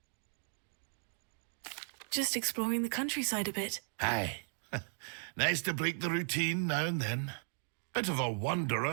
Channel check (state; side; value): silent; left; digital silence